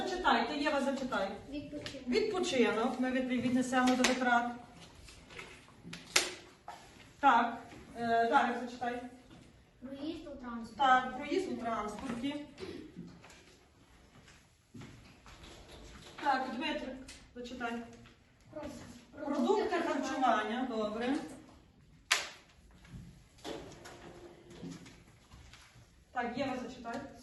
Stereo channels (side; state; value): both; identical; correlation 1.00